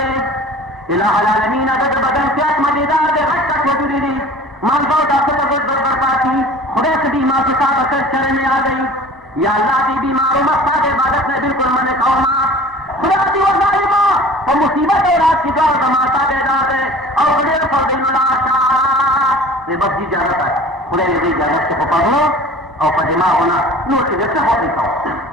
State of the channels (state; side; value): normal; both; correlation 0.43